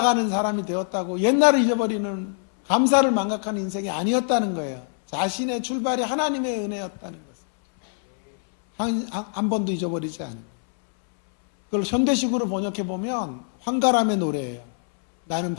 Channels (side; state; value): right; silent; 63 dB below the other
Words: 사람이 되었다고 옛날을 잊어버리는, 감사를 망각하는 인생이 아니었다는 거예요. 자신의 출발이 하나님의 은혜였다는 것을 한 번도 잊어버리지 않은 거예요. 그걸 현대식으로 번역해 보면 황가람의 노래예요. 나는